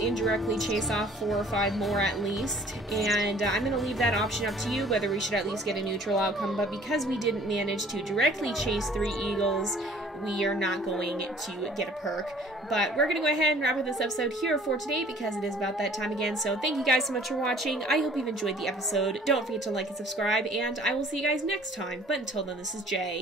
chase off 4 or 5 more at least. And I'm going to leave that option up to you, whether we should at least get a neutral outcome. But because we didn't manage to directly chase 3 eagles, we are not going to get a perk. But we're going to go ahead and wrap up this episode here for today because it is about that time again. So thank you guys so much for watching. I hope you've enjoyed the episode. Don't forget to like and subscribe, and I will see you guys next time. But until then, this is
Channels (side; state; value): both; normal; correlation 0.54